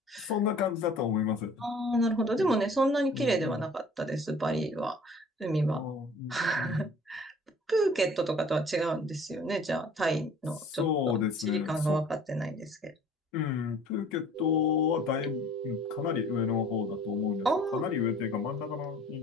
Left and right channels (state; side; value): normal; both; correlation 0.50